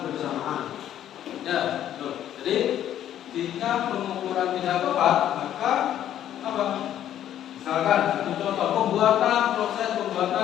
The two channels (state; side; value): quieter; right; 11.2 dB